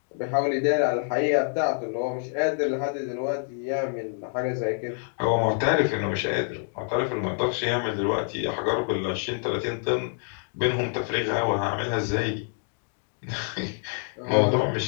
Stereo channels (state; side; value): silent; right; 60 dB below the other